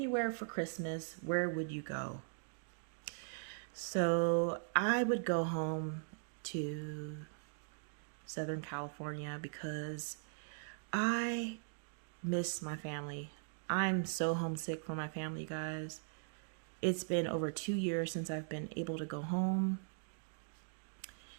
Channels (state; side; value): silent; left; digital silence